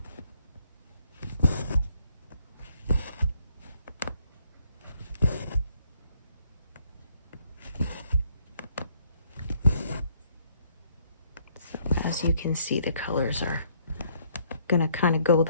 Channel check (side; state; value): both; inverted; correlation -0.67